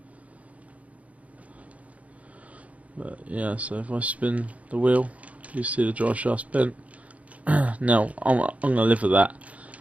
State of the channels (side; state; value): left; late; 0.067 ms